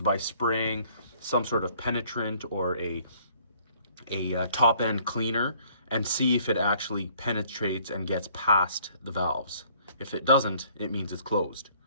by spraying some sort of penetrant or a top end cleaner and see if it actually penetrates and gets past the valves. If it doesn't, it means it's closed.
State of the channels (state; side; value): inverted; both; correlation -0.59